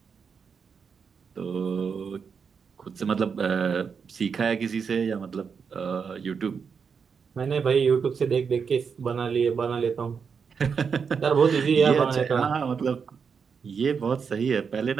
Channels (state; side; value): quieter; left; 6.1 dB